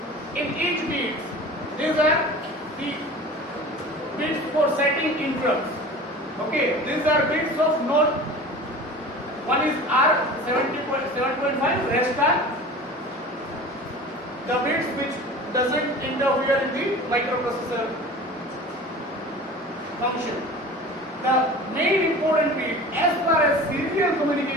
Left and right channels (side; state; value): both; normal; correlation 0.38